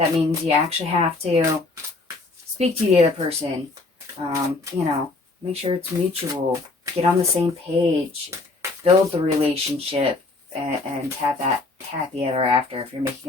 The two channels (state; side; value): quieter; right; 3.4 dB